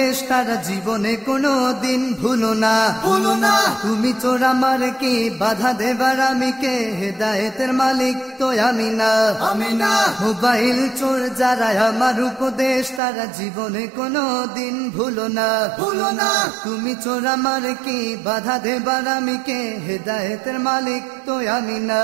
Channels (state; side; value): drops out; left; at 13.0 s